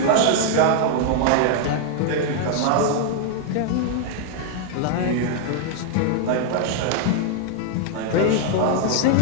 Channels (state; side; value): different; both; correlation 0.00